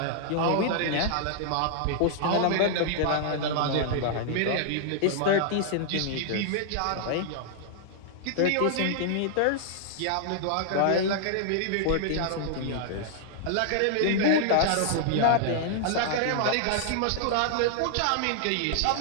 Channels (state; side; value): different; both; correlation -0.01